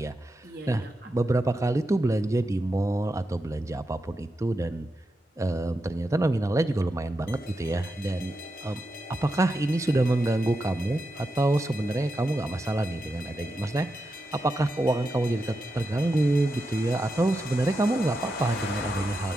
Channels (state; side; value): normal; both; correlation 0.87